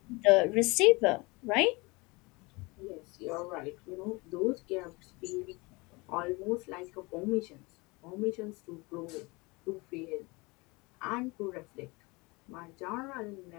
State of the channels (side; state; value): right; quieter; 25.5 dB